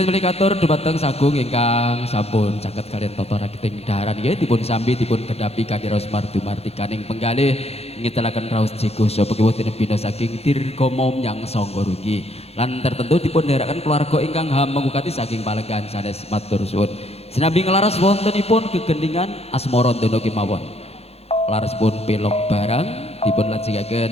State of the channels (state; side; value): late; right; 0.30 ms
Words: melikatur dumateng sagung ingkang sampun caket kalian toto rakiting daharan nggih dipun sambi dipun gedhapi kanthi raos mardumartikaning penggalih ngitelaken raos jigo sapa kiwutin bina saking dirgama nyang sangga rugi lan tertentu dipun dherekaken keluarga ingkang hamengukati saking palenggan sanes matur suwun. Sinambi nglaras wontenipun gegendingan asmara dono kemawon. Larasipun pelok barang dipun